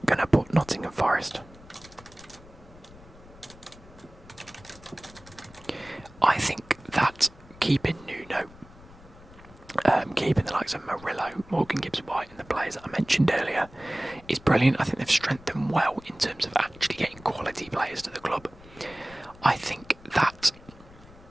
going to put Nottingham Forest. I think that keeping Nuno, keeping the likes of Murillo, Morgan Gibbs-White and the players that I mentioned earlier is brilliant. I think they've strengthened well in terms of actually getting quality players to the club. I think that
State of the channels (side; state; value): left; noise; rumble, 22 dB below the sound